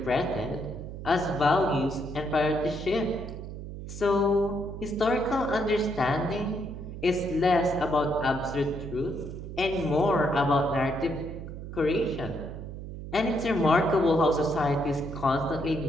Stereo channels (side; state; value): right; noise; hum, 9 dB below the sound